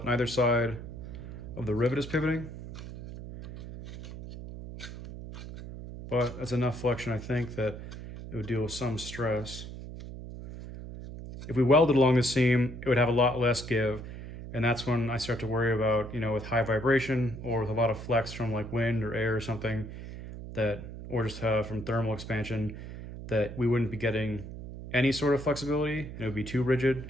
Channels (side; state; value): right; noise; hum, 11 dB below the sound